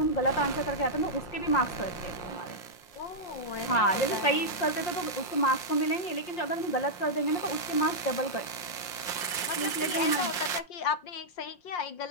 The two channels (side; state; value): right; late; 5.6 ms